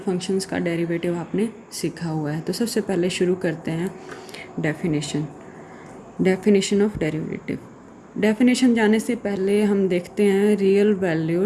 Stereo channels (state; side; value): identical; both; correlation 1.00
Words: का डेरिवेटिव आपने सीखा हुआ है। तो सबसे पहले शुरू करते हैं डेफिनेशन ऑफ डेरिवेटिव। डेफिनेशन जाने से पहले हम देखते हैं रियल